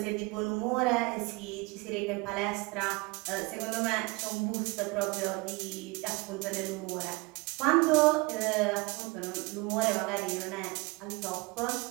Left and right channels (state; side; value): quieter; left; 25.8 dB